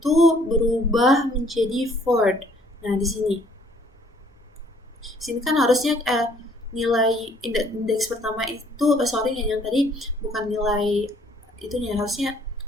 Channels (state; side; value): normal; both; correlation 0.61